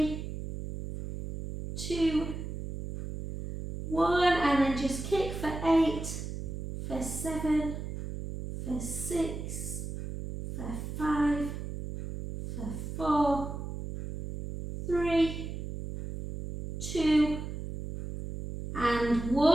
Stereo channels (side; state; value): right; noise; hum, 7 dB below the sound